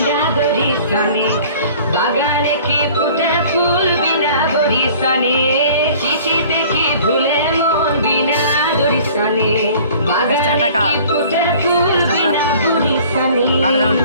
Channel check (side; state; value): both; inverted; correlation -0.49